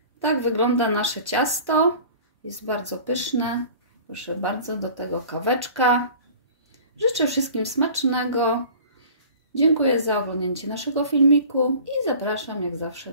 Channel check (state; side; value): inverted; both; correlation -0.44